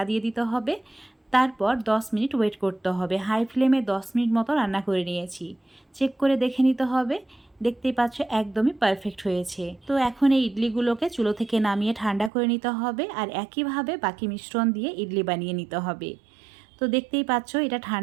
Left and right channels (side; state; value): left; drops out; at 12.3 s